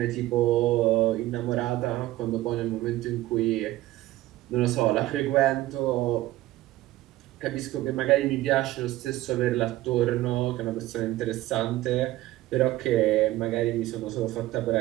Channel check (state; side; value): quieter; left; 16.4 dB